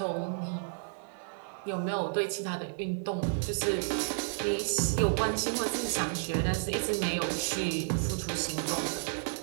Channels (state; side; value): silent; left; digital silence